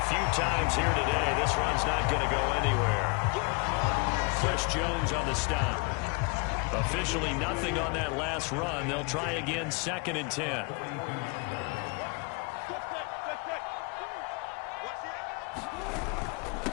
few times here today, this run's not going to go anywhere. Chris Jones on the stop. Officially nothing on that last run. They'll try again 2nd and 10.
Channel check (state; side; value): quieter; right; 30.7 dB